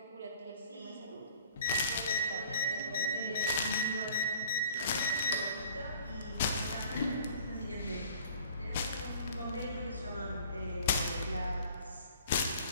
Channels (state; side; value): inverted; both; correlation -0.50